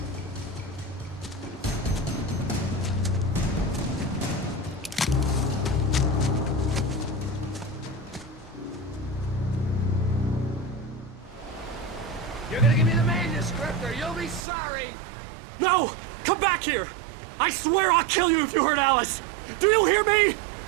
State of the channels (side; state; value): left; drops out; at 14.4 s